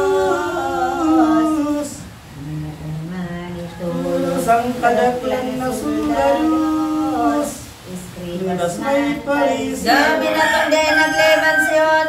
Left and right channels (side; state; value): both; identical; correlation 1.00